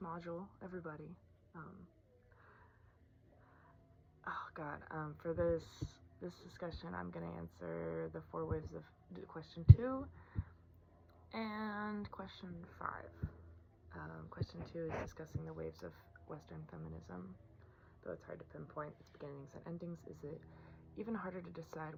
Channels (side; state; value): both; identical; correlation 1.00